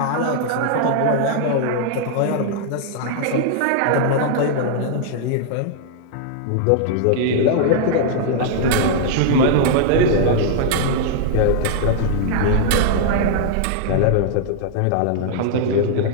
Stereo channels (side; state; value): both; different; correlation -0.01